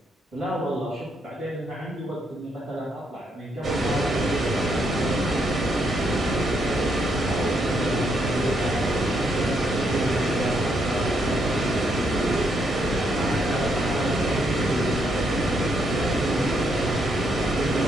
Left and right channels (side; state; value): both; normal; correlation 0.75